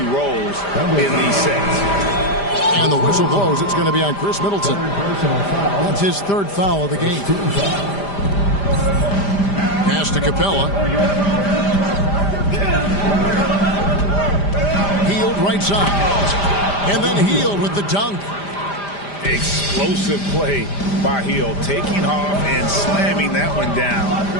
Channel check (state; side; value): late; right; 5.0 ms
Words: rolls in these sets. And the whistle blows. It's going to be on Chris Middleton. That's his 3rd foul of the game. Pass to Capella. Healed right side. And then Healed with the dunk. Explosive play by Hill, taking off and slamming that one down